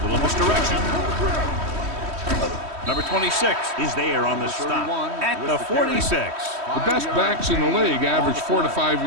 little misdirection. Number 26 is there on the stop at the 46. The best backs in the league average 4 to 5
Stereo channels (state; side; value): late; left; 3.1 ms